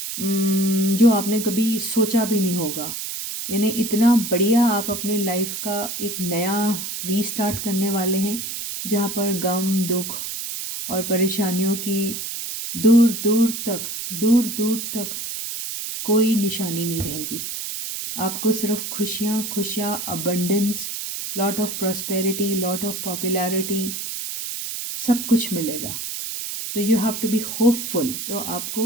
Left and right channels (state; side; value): noise; right; hiss, 5 dB below the sound